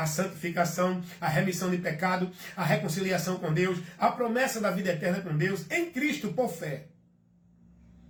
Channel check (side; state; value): both; identical; correlation 1.00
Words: santificação, a remissão de pecado, a reconciliação com Deus, a promessa da vida eterna com Deus, em Cristo por fé.